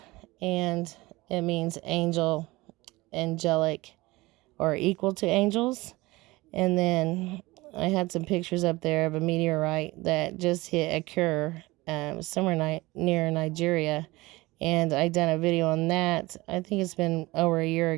and it means angel, angelic, or equal to angels. And then I had some pictures up there of a meteorite that just hit occur somewhere near Nigeria, and I done a video on that. I think it's been over a year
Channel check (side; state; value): left; quieter; 20.8 dB